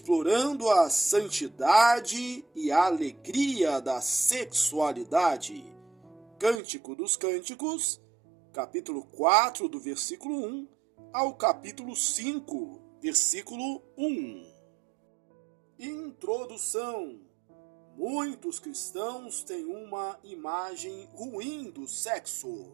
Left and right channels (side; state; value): left; drops out; at 6.6 s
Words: a santidade e a alegria da sexualidade. Cântico dos Cânticos, capítulo 4, do versículo 1 ao capítulo 5, versículo 1. Introdução. Muitos cristãos têm uma imagem ruim do sexo.